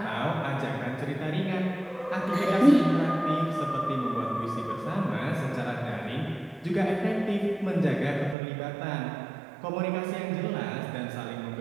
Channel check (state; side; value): drops out; left; at 8.3 s